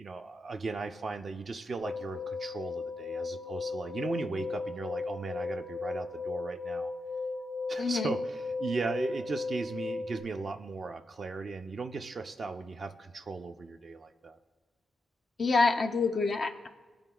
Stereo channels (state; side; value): normal; both; correlation 0.85